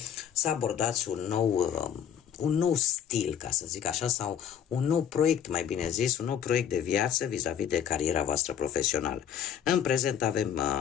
să abordați un nou stil, ca să zic așa, sau un nou proiect, mai bine zis, un nou proiect de viață vis-a-vis de cariera voastră profesională. În prezent avem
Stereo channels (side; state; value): right; quieter; 8.8 dB